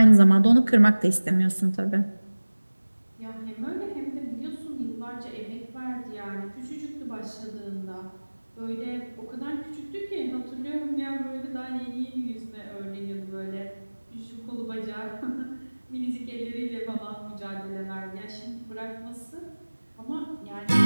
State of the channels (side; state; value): both; inverted; correlation -1.00